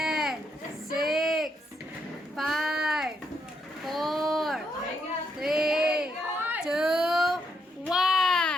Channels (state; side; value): normal; both; correlation 0.77